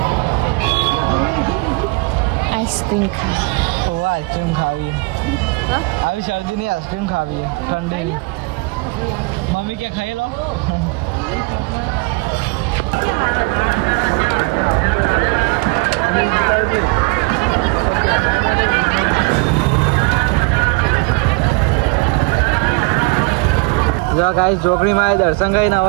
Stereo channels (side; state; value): left; quieter; 30.2 dB